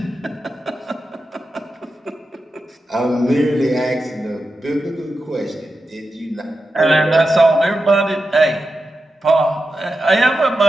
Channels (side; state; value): both; normal; correlation 0.90